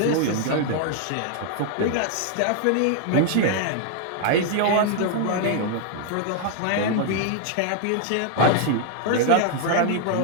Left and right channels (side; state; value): both; different; correlation 0.00